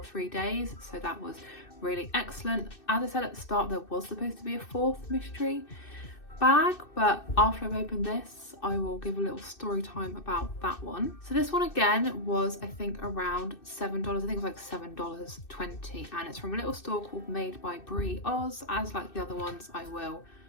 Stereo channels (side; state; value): right; late; 2.6 ms